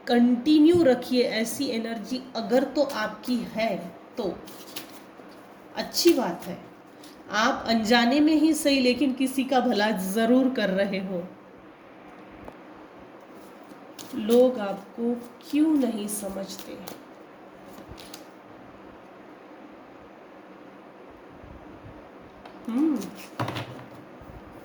कंटिन्यू रखिए ऐसी एनर्जी, अगर तो आपकी है तो अच्छी बात है। आप अनजाने में ही सही, लेकिन किसी का भला ज़रूर कर रहे हो। लोग आपको क्यों नहीं समझते? हम्म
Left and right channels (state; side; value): identical; both; correlation 1.00